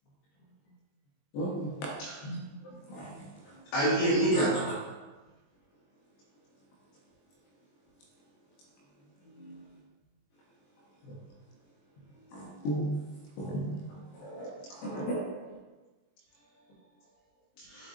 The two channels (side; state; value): right; late; 21 ms